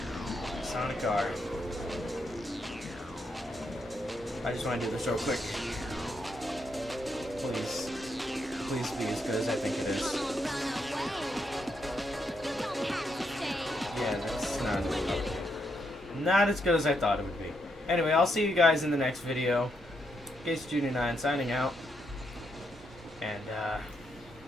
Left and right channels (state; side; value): normal; both; correlation 0.79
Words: Sonic R. I just want to do this real quick. Please. Please be as good as I think it is. Yeah, that's not as good as I thought it would be. Anyway, I'll see you guys in the next video. Case Junior 9 signing out. And,